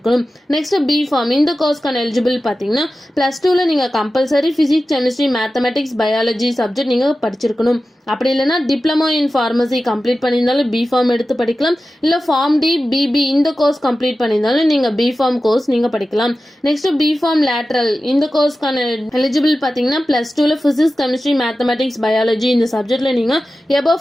நெக்ஸ்ட் பிஃபார்ம் இந்த கோர்ஸ்க்கான எலிஜிபிள் பார்த்தீங்கன்னா +2ல நீங்கள் compulsory physics, chemistry, mathematics, biology subject நீங்கள் படிச்சிருக்கணும். அப்படி இல்லைன்னா டிப்ளமோ இன் ஃபார்மசி கம்ப்ளீட் பண்ணியிருந்தாலும் பிஃபார்ம் எடுத்து படிக்கலாம். இல்லை ஃபார்ம் டி, பிபி இந்த கோர்ஸ் கம்ப்ளீட் பண்ணியிருந்தாலும் நீங்கள் பிஃபார்ம் கோர்ஸ் நீங்கள் படிக்கலாம். நெக்ஸ்ட் பிஃபார்ம் லேட்ரல் இந்த கோர்ஸ்க்கான எலிஜிபிள் பார்த்தீங்கன்னா +2ல ஃபிசிக்ஸ், கெமிஸ்ட்ரி, மேத்தமெட்டிக்ஸ், பயாலஜி இந்த சப்ஜெக்ட்ல நீங்கள் எபோவ்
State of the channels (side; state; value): both; normal; correlation 0.94